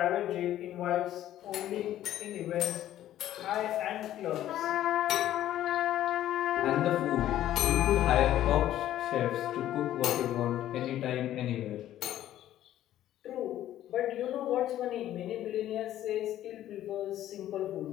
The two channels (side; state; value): right; quieter; 12.7 dB